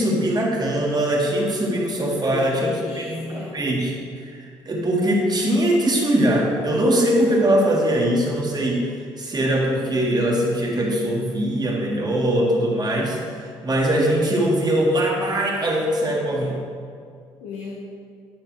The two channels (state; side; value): normal; both; correlation 0.66